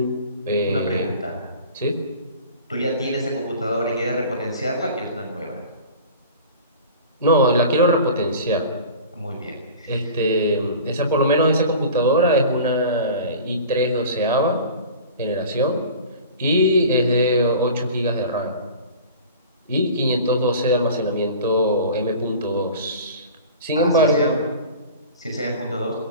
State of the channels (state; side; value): inverted; both; correlation -0.39